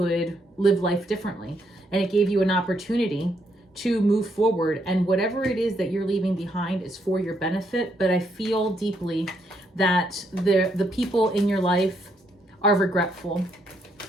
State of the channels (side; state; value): both; normal; correlation 0.75